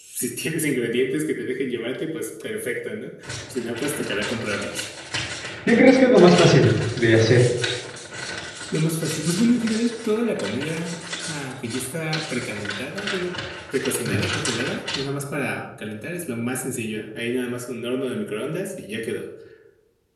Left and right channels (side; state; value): both; identical; correlation 1.00